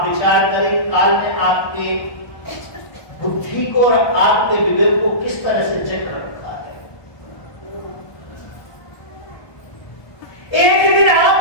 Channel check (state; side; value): late; right; 1.2 ms